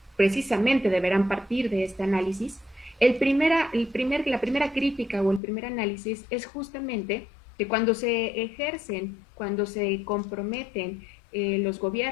precisamente deberán partir de este análisis. La primera crítica o el primer análisis es justamente que cuando se ejercen, cuando se comprometen los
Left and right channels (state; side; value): drops out; right; at 5.4 s